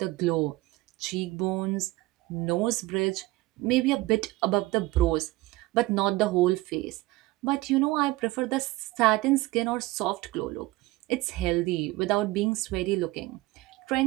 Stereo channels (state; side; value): quieter; left; 19.7 dB